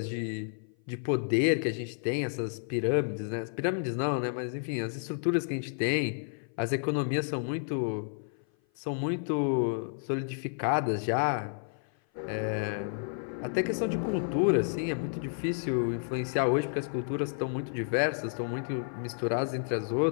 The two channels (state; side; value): silent; right; 55 dB below the other